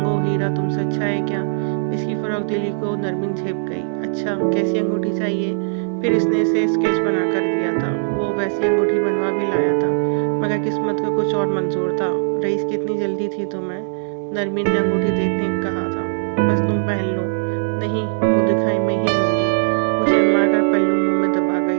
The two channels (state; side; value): silent; left; 62 dB below the other